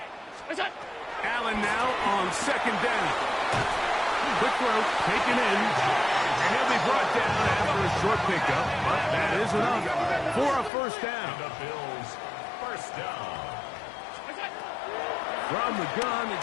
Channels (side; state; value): right; drops out; at 10.7 s